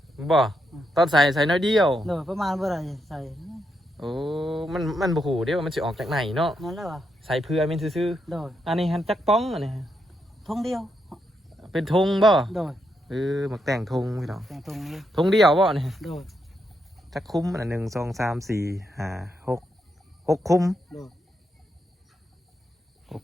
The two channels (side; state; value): both; normal; correlation 0.81